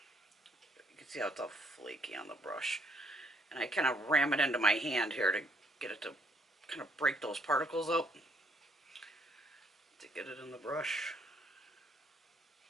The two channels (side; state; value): both; normal; correlation 0.68